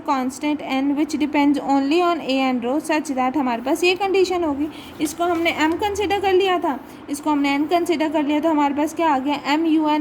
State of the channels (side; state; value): both; identical; correlation 1.00